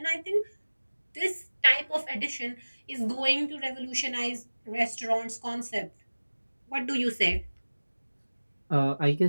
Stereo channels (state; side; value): inverted; both; correlation -1.00